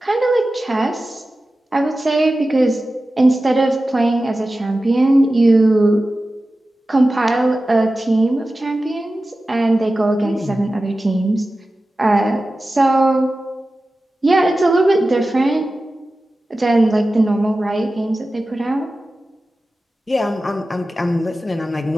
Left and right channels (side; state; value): both; normal; correlation 0.95